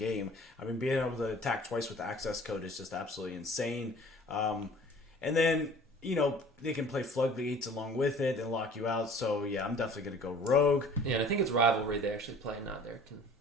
I mean, being able to attack twice with access code is just absolutely insane. And then, they can play floodgates along with it and lock you out. So, yeah, I'm definitely going to go rogue. Yeah, and I think it's Rivalry they actually play, not there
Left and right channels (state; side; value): normal; both; correlation 0.48